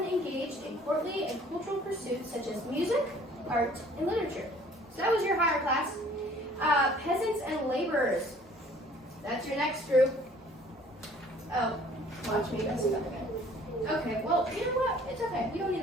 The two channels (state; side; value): normal; both; correlation 0.54